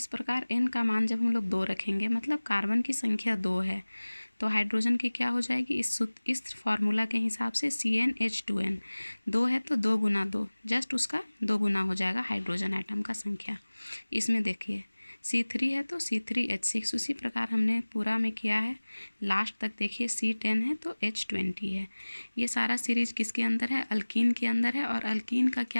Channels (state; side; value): inverted; both; correlation -1.00